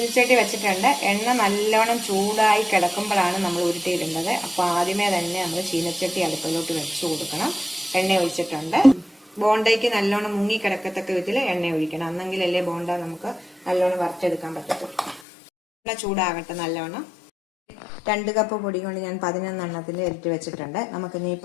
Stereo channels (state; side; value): drops out; right; at 15.2 s